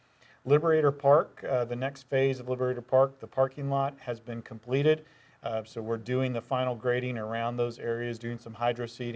Liberator Park, the next phase of Liberator Park, the parking lot has been completed. So we're doing the final grading around those areas, doing some hydro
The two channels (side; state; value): both; identical; correlation 1.00